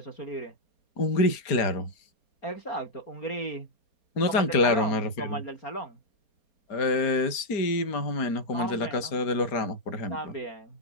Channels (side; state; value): right; late; 4.3 ms